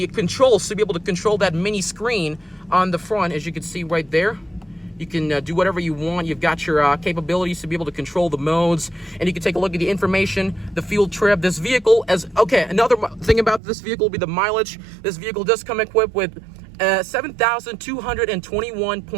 controls to be able to control that mini screen on the front, as you can see right there. You can do whatever you want. You've got your capabilities to be able to control the modes, and you can take a look at the information, the fuel trip. This vehicle, another thing about this vehicle will be the mileage. This vehicle does come equipped with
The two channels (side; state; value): left; drops out; at 13.6 s